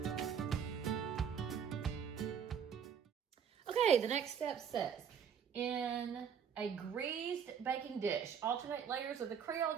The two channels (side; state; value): left; quieter; 7.7 dB